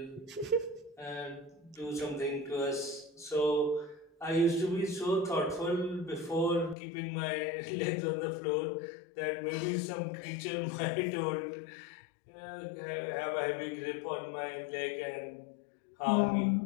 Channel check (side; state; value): right; drops out; at 6.8 s